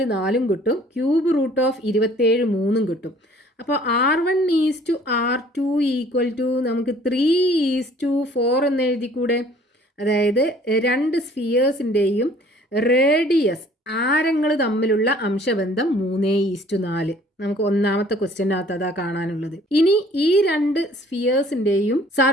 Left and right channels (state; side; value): normal; both; correlation 0.55